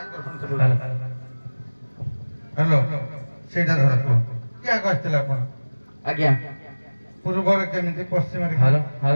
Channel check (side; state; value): both; inverted; correlation -1.00